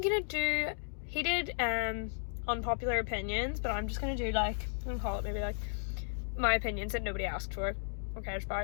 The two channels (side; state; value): right; silent; digital silence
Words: gonna do. He did unpopular opinions, but I'm just gonna do like I'm gonna call it maybe like my opinions that nobody asked for or cares